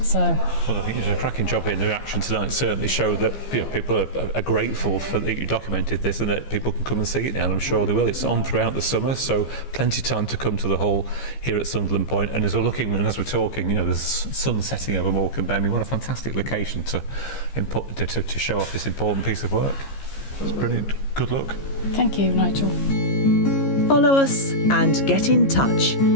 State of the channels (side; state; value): right; late; 15 ms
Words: well, I think you did a cracking job here, and the reaction tonight certainly showed that people are grateful for that you documented this, and that people can come and see it now, and I'm sure they will. It's on throughout the summer, so plenty of time to come to the hall here at Sunderland Point. And as we're looking and as we're talking, there's sun setting over Morecambe Bay. I mean, what a fantastic location to show off this important piece of work. It's brilliant. Good luck. Thank you, Nigel. Follow us and get in touch.